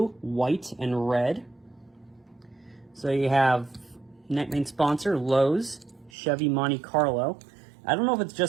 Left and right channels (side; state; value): left; drops out; at 6.1 s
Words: white, and red. So you have main sponsor Lowe's, Chevy Monte Carlo. I don't know if it's